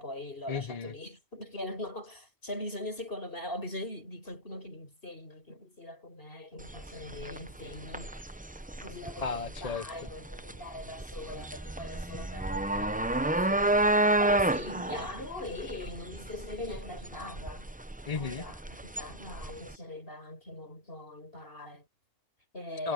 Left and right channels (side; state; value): both; normal; correlation -0.03